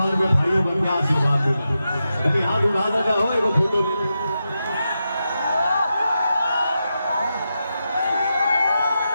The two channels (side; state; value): both; inverted; correlation -0.88